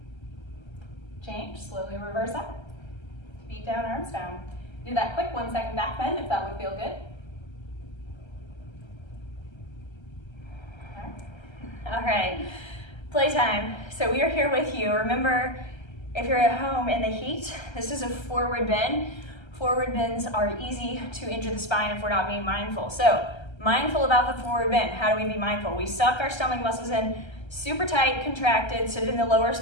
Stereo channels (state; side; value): late; right; 1.3 ms